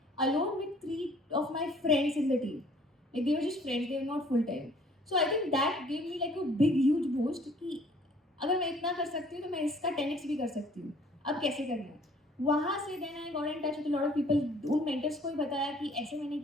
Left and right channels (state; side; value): normal; both; correlation 0.57